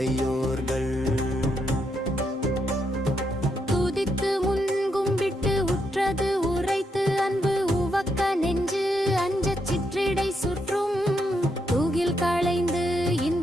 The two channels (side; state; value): both; normal; correlation 0.79